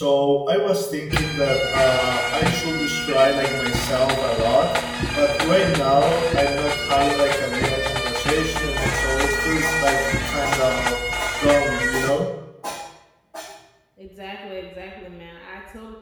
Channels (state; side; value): identical; both; correlation 1.00